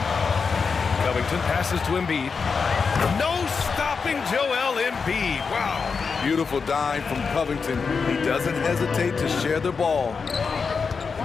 Covington passes to Embiid. No stopping Joel Embiid. Wow. Beautiful dime from Covington. He doesn't hesitate to share the ball.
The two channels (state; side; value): quieter; right; 5.3 dB